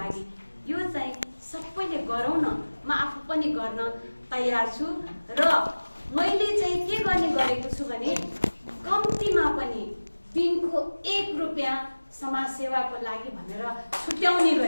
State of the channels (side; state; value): both; inverted; correlation -1.00